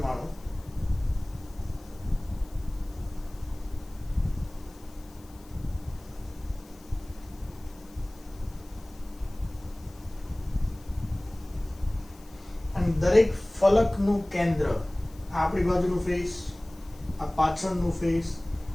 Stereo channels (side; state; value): left; noise; hiss, 25 dB below the sound